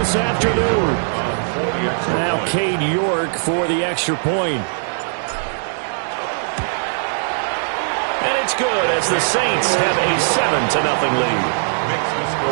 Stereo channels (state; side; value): silent; left; digital silence